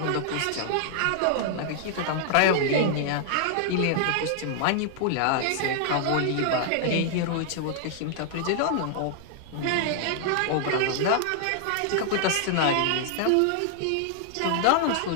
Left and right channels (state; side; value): different; both; correlation -0.01